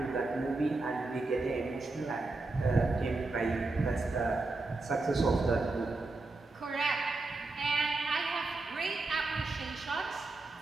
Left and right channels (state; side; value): quieter; left; 3.3 dB